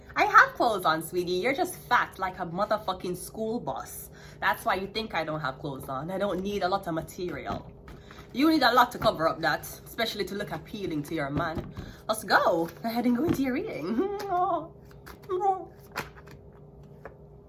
I have clothes on, sweetie. You're just fat like a motherfucking school bus. That's why you think I don't have clothes on. I don't need a lot of material. You need a lot to cover up that, especially to look appealing to your man. Let's go. Go ahead and go into your reading.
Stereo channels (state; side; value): identical; both; correlation 1.00